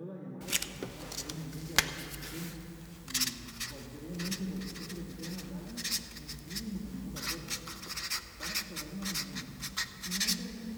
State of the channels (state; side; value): identical; both; correlation 1.00